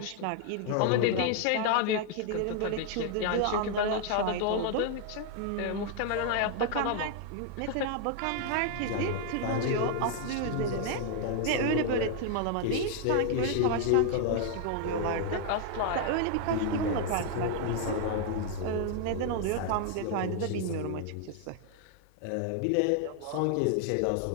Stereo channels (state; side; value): different; both; correlation 0.00